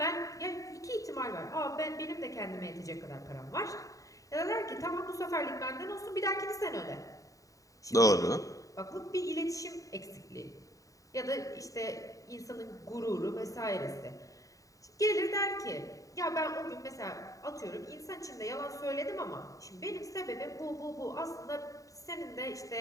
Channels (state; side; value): late; right; 0.16 ms